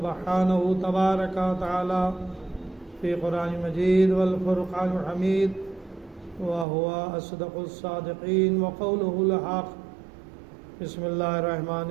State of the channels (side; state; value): left; drops out; at 6.7 s